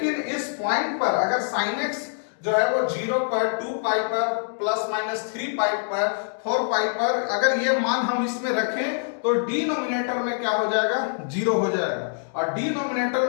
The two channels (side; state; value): right; silent; digital silence